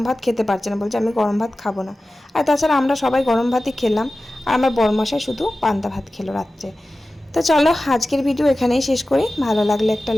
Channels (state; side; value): normal; both; correlation 0.95